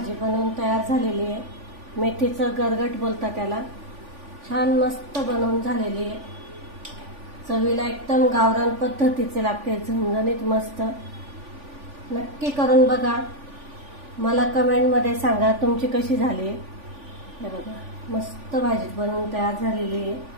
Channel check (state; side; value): late; left; 3.5 ms